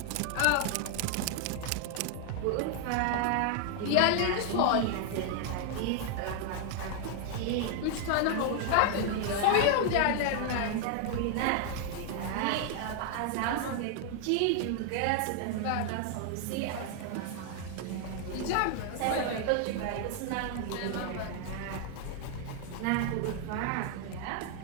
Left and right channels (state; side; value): different; both; correlation 0.00